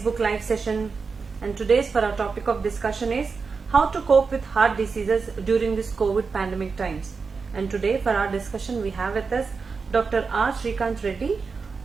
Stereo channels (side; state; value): left; quieter; 4.9 dB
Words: live session. And today's for our topic of discussion is how to cope with heart diseases during this COVID pandemic times. And today for our discussion we have with us Dr. R. Srikanth Reddy.